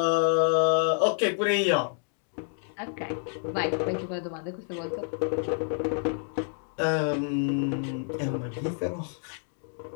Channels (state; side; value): silent; right; 59 dB below the other